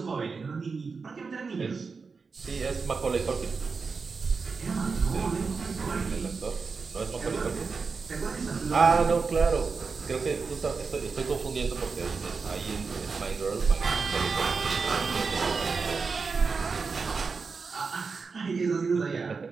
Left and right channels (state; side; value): quieter; left; 4.8 dB